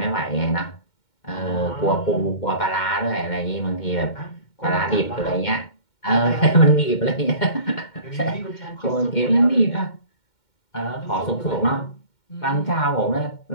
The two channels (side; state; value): right; late; 2.1 ms